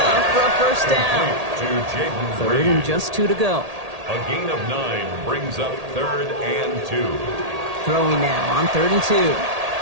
for a first down. 3rd and just 2 to go. A gain of 9 brings up 3rd and 2. Throwing now on 3rd and 2.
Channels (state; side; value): late; left; 1.8 ms